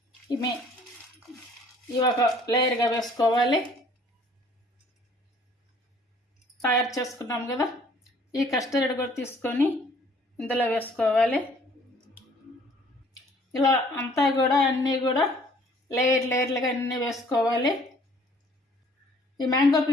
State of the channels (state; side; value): normal; both; correlation 0.57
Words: ఇవి ఒక లేయర్గా వేసుకోవాలి. తయారు చేసుకున్నాం కదా, ఈ కస్టర్డ్ కూడా తీసుకొని ఇందులో వేసుకోవాలి. ఇలా అంతా కూడా అన్నీ కూడా లేయర్లుగా అన్నీ వేసుకోవాలి. ఈ మ్యాంగో